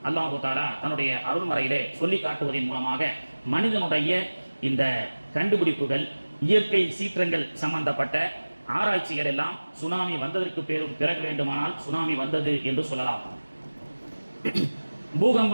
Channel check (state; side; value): inverted; both; correlation -1.00